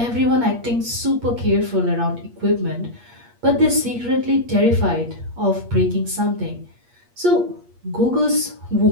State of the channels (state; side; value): late; left; 8.4 ms